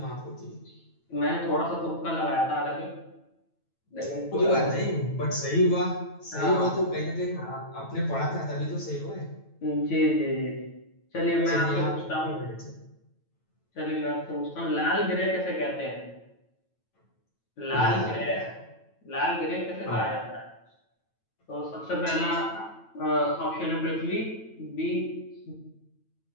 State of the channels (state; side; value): late; right; 9.1 ms